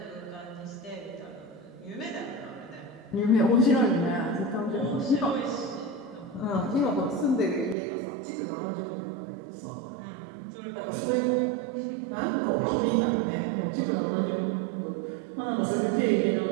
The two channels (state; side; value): drops out; left; at 7.8 s